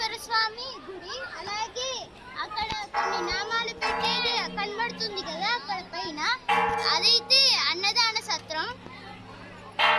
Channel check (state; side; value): identical; both; correlation 1.00